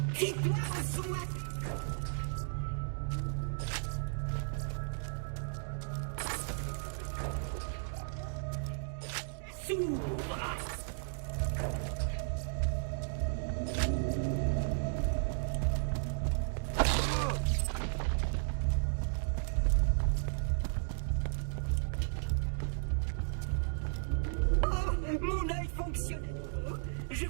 Fie-toi au son apaisant de ma voix! Et ça s'ouvre! Mon œil fonctionne à nouveau. Je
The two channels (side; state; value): left; silent; digital silence